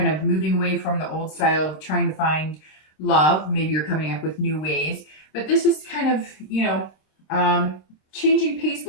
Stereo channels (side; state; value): right; late; 26 ms